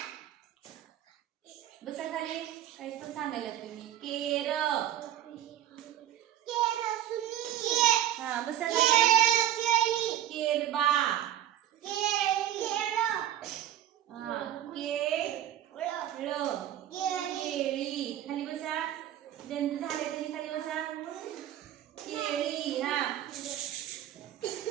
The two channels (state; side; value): quieter; left; 11.8 dB